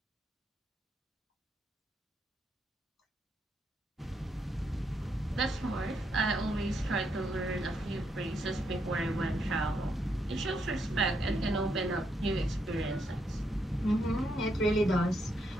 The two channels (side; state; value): both; normal; correlation 0.78